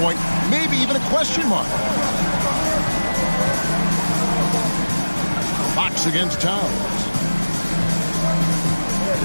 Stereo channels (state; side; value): inverted; both; correlation -1.00